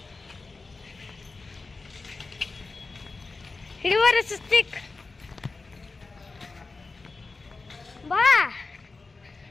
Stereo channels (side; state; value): right; quieter; 3.8 dB